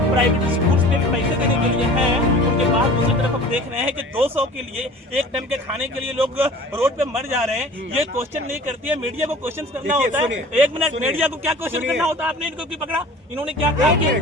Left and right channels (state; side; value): normal; both; correlation 0.43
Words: प्राइवेट स्कूल्स में पैसे देने के लिए हैं। उनके बाद दूसरी तरफ हम देख रहे हैं कि 200 के लिए, एक टाइम के खाने के लिए लोग रोड पे मर जा रहे हैं। ये क्वेश्चन नहीं करती है, मीडिया को क्वेश्चन करना होता है। एक मिनट, मीडिया को क्या क्वेश्चन करना होता है? आपने इनको क्यों पकड़ा? इन्होंने क्या कहा कि